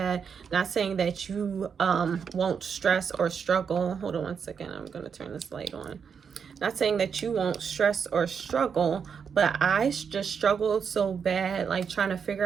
Not saying that you won't stress or struggle. Hold on one second, I'm gonna turn this light on. Not saying that you won't stress or struggle, but I just struggled so bad, like trying to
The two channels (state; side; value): quieter; left; 6.6 dB